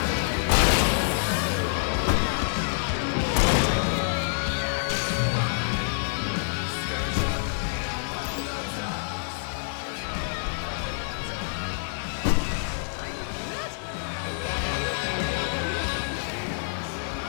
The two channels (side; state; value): right; silent; digital silence